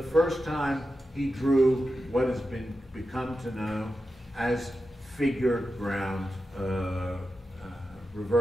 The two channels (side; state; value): both; normal; correlation 0.91